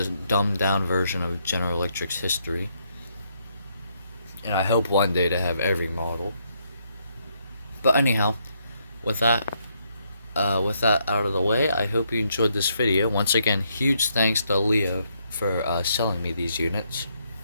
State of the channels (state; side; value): inverted; both; correlation -0.75